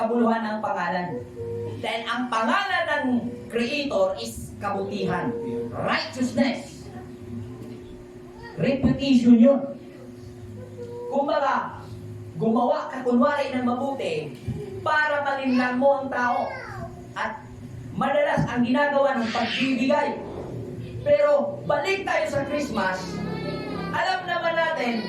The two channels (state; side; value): identical; both; correlation 1.00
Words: ng pangalan. Dahil ang pangalan ng Creator is kabutihan, righteousness, reputation yun. Kumbaga, gumawa ka kunwari ng mabuti para malinlang mo ang tao. At madalas ang ginagawa ng pagbibigay. Pero balik tayo sa Christmas, alam naman natin,